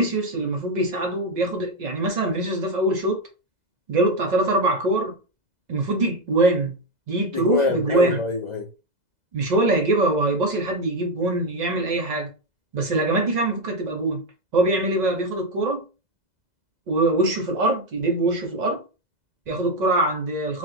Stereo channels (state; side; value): late; left; 2.0 ms